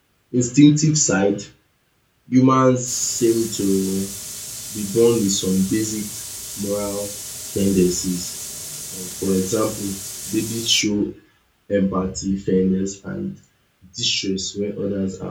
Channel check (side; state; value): both; identical; correlation 1.00